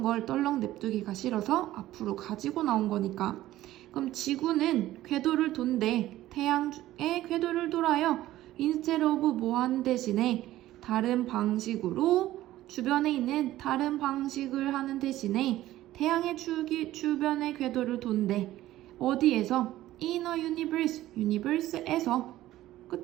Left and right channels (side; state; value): left; quieter; 14.9 dB